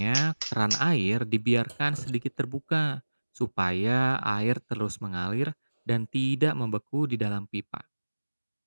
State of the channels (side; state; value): both; inverted; correlation -1.00